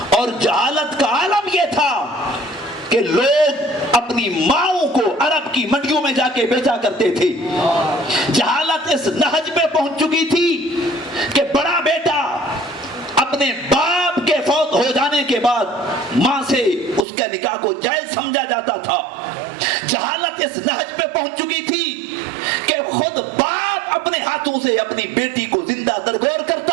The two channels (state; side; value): drops out; left; at 17.1 s